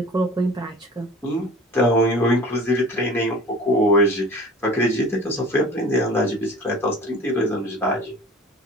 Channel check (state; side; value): normal; both; correlation 0.42